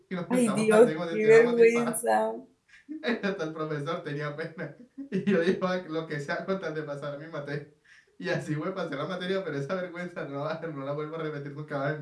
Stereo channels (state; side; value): identical; both; correlation 1.00